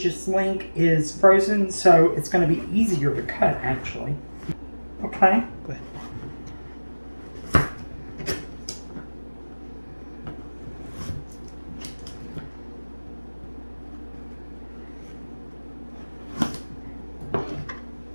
link is frozen, so it's going to be easier to cut actually. Okay? Go ahead.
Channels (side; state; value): both; inverted; correlation -1.00